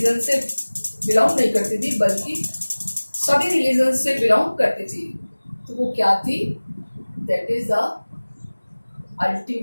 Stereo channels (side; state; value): both; inverted; correlation -1.00